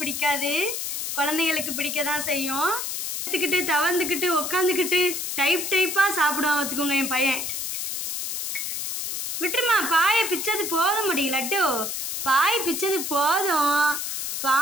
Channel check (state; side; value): noise; left; hiss, 3 dB below the sound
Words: குழந்தைங்களுக்கு பிடிக்க தான் செய்யும். எடுத்துக்கிட்டு தவந்துக்கிட்டு உக்காந்துக்கிட்டு டைப்பாக சாப்பிடுவான். பார்த்துக்கோங்க என் பையன். விட்டுருமா, பாயை பிச்சது போதும் முடியும். லட்டு பாய் பிச்சது போதும்,